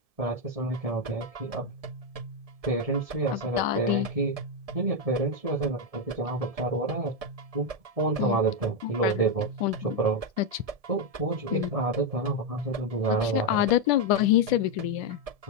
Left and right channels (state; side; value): late; left; 1.7 ms